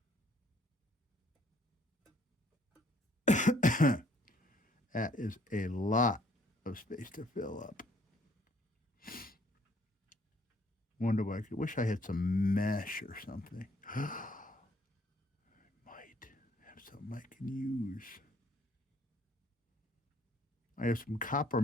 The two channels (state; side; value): normal; both; correlation 0.63